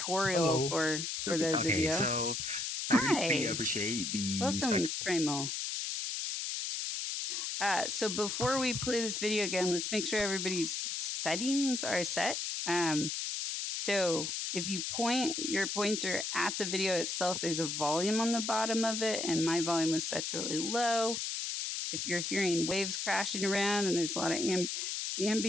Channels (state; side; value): noise; left; hiss, 3 dB below the sound